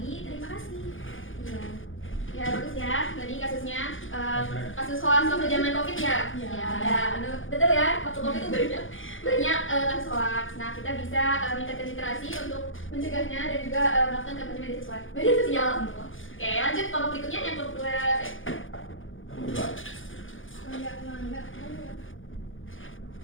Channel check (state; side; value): late; right; 0.58 ms